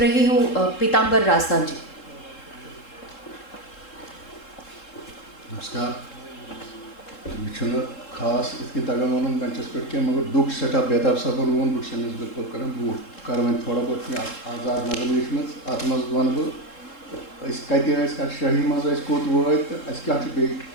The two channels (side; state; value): right; late; 3.7 ms